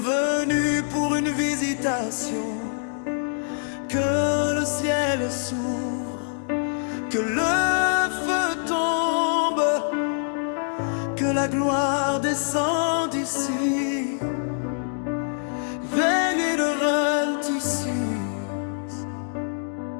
venus pour une visitation. Que le ciel s'ouvre, que le feu tombe, que la gloire descende ici. Veillez ici.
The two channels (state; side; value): silent; right; digital silence